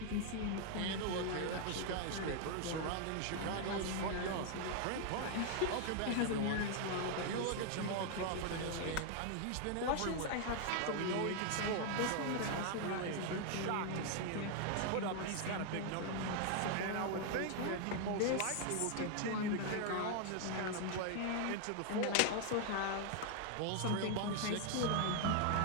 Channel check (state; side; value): different; both; correlation 0.00